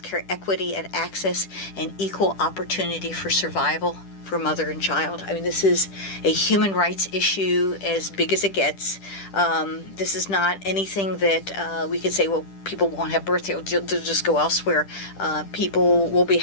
equity and access, and equal opportunity for survival for mother and child. I mean, this is a human rights issue as big as it gets. This is not anything that we could say, well, people won't have birth, they'll just go elsewhere. People will be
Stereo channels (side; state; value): right; late; 10 ms